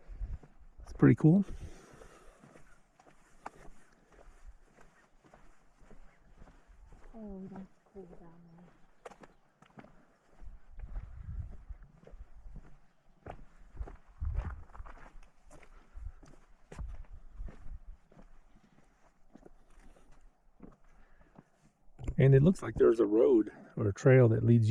it's pretty cool. Oh, that's cool down there. And it looks like there's a road or a trail that leads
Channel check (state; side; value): identical; both; correlation 1.00